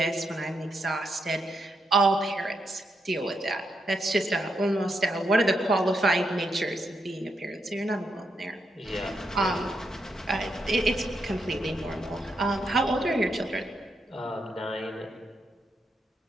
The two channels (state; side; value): normal; both; correlation 0.81